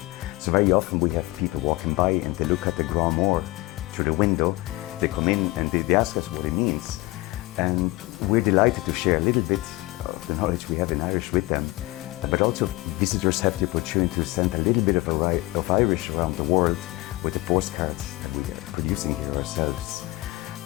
So very often we have people walking by and they look at the gcomhar through the window, they come in and they ask us what it means, and we're delighted to share a little bit of the knowledge we have in Irish with them. But also visitors have the opportunity to send a little bit of Irish around the world with the postcards that we are producing here ourselves.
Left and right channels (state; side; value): quieter; right; 20.7 dB